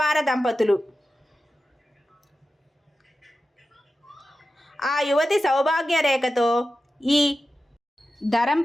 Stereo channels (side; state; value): both; normal; correlation 0.93